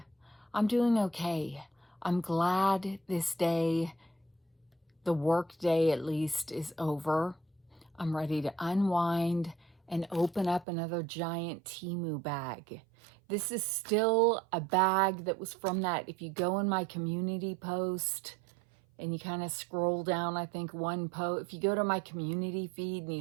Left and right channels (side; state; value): left; drops out; at 10.7 s